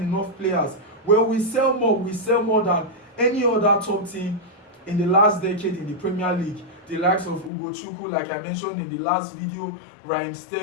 players? Well, we sell more than any other top team in the last decade in the Premier League. The likes of Ugochukwu, like I mentioned in the last video, Raheem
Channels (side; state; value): right; drops out; at 7.5 s